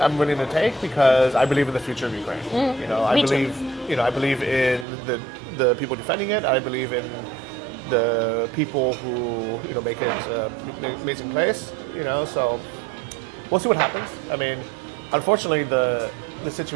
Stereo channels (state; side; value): drops out; left; at 4.9 s